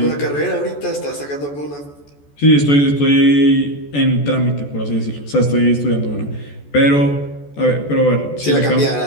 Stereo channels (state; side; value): late; right; 14 ms